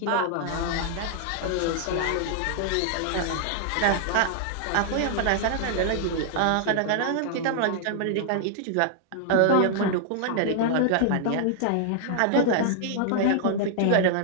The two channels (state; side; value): different; both; correlation -0.01